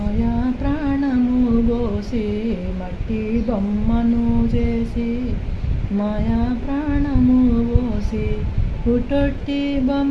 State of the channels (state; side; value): identical; both; correlation 1.00